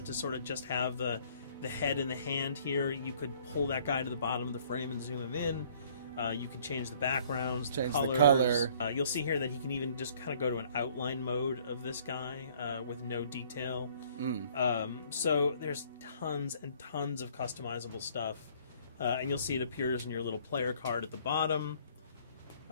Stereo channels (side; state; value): both; inverted; correlation -0.58